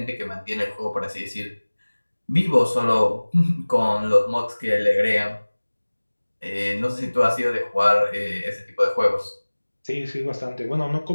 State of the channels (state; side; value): inverted; both; correlation -1.00